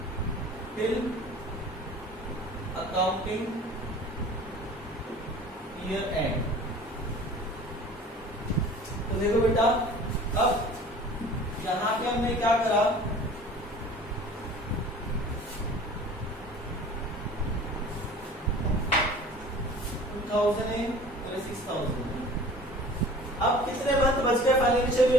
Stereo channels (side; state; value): both; normal; correlation 0.44